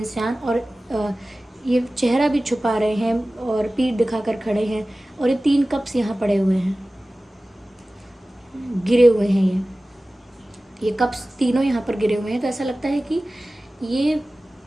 और ये चेहरा भी छुपा रहे हैं और पीठ दिखाकर खड़े हैं, और ये 3 कप्स यहाँ पड़े हुए हैं, गिरे हुए हैं ये कप्स तीनों यहाँ पर गिरे हुए हैं। तो ऐसा लगता है कि ये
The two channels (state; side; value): normal; both; correlation 0.97